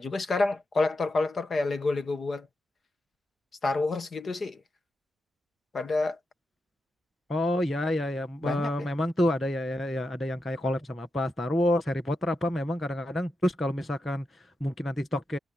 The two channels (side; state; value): both; normal; correlation 0.88